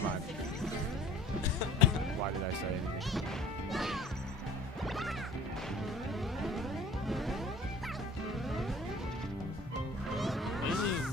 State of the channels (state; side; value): normal; both; correlation 0.48